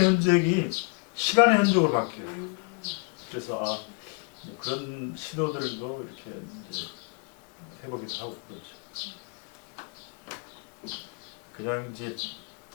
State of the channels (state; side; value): quieter; right; 34.3 dB